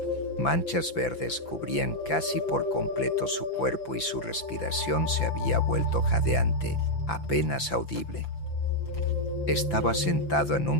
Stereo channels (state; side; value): late; right; 5.9 ms